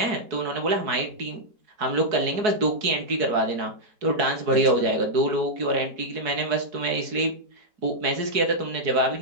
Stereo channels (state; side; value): late; left; 4.7 ms